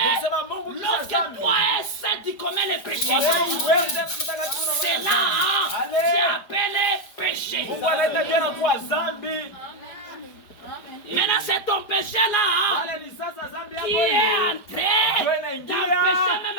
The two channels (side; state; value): right; late; 4.9 ms